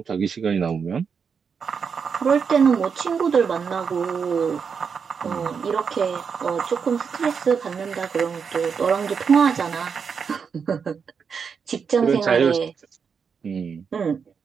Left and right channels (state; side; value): quieter; left; 6.2 dB